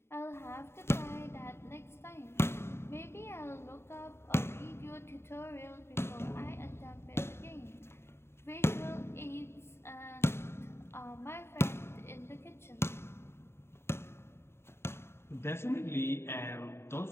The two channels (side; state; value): right; late; 0.12 ms